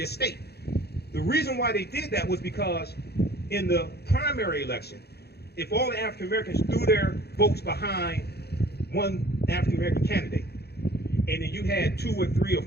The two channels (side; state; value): right; late; 0.47 ms